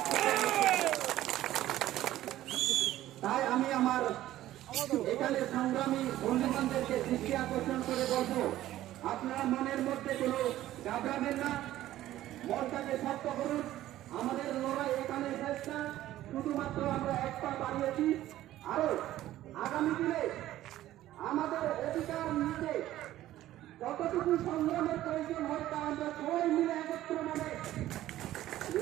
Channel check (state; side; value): quieter; left; 14.2 dB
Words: তাই আমি আমার এখানে সংগ্রামী বন্ধুবান্ধবদেরকে দৃষ্টি আকর্ষণ করে বলবো, আপনারা মনের মধ্যে কোনো ঘাবড়াবেন না, মনটাকে শক্ত করুন। আমাদের লড়াই এখানে শেষ না, শুধুমাত্র আমরা এক পা বাড়িয়েছি। আরো আগামী দিনে আমাদের অধিকার নিতে যতটুকু সংগ্রামের প্রয়োজন হয় তা আমরা সবাই মিলে একত্র মানে